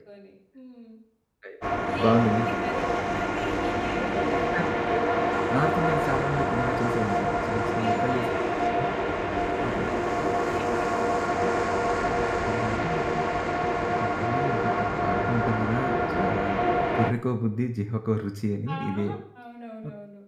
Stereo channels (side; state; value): both; identical; correlation 1.00